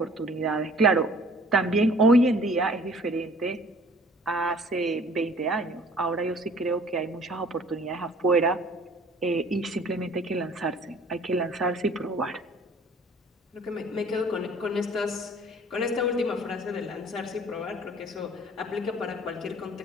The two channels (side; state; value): both; normal; correlation 0.52